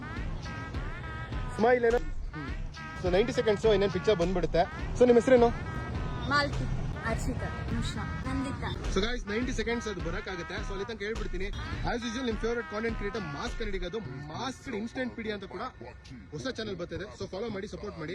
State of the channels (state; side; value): identical; both; correlation 1.00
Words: ಸ್ಮೈಲ್ ಏನೋ. ಸೊ 90 ಸೆಕೆಂಡ್ಸ್ ಇನ್ನೇನು ಪಿಕ್ಚರ್ ಬಂದ್ಬಿಡುತ್ತೆ. ಸೊ ನಿಮ್ಮ ಹೆಸರೇನು? Malti, Arshita, Nimisha, Nandita. So guys 90 seconds ಅದು ಬರಕಾಗುತ್ತೆ. ಸೊ ಅಲ್ಲಿ ತನಕ ಹೇಳ್ಬಿಡ್ತೀನಿ. ಆಸ್ ಯೂಶುವಲ್ ನಿಮ್ ಫೇವರೇಟ್ ಕಾಂಟೆಂಟ್ ಕ್ರಿಯೇಟರ್ ಮಾಸ್ ಕನ್ನಡಿಗದು ಮಾಸ್ ಇನ್ಸ್ಟೆಂಟ್ ಪೀಡಿ ಅಂತ ಕೂಡ ಹೊಸ ಚಾನಲ್ ಬರ್ತಿದೆ. ಸೊ ಫಾಲೋ ಮಾಡಿ, ಸಪೋರ್ಟ್ ಮಾಡಿ.